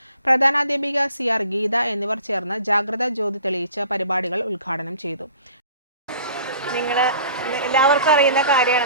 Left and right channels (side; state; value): both; inverted; correlation -0.49